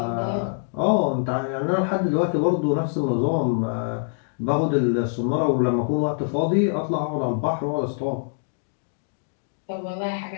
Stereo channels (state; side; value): silent; right; digital silence